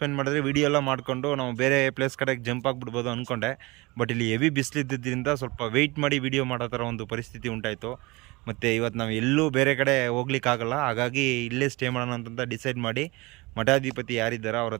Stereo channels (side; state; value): left; quieter; 24.0 dB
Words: ಮಾಡಿದ್ರೆ ವಿಡಿಯೋ ಎಲ್ಲ ಮಾಡಿಕೊಂಡು ನಾವು ಬೇರೆ ಪ್ಲೇಸ್ ಕಡೆಗೆ ಜಂಪ್ ಆಗಿಬಿಡ್ಬೋದು ಅಂದ್ಕೊಂಡೆ. ಬಟ್ ಇಲ್ಲಿ ಹೆವಿ ಬಿಸಿಲಿದ್ದರಿಂದ ಸ್ವಲ್ಪ ವೆಯ್ಟ್ ಮಾಡಿ ವಿಡಿಯೋ ಮಾಡೋ ಥರ ಒಂದು ಪರಿಸ್ಥಿತಿ ಉಂಟಾಯಿತು. ಮತ್ತು ಇವತ್ತು ನಾವು ಎಲ್ಲೂ ಬೇರೆ ಕಡೆ ಹೋಗ್ಲಿಕ್ಕಾಗಲ್ಲ, ಹಾಗಾಗಿ ಇಲ್ಲೇ ಸ್ಟೇ ಮಾಡೋಣ ಅಂತ ಡಿಸೈಡ್ ಮಾಡಿ ಮಠಾಧಿಪತಿ ಯಾರಿದ್ದಾರೋ ಅವ್ರ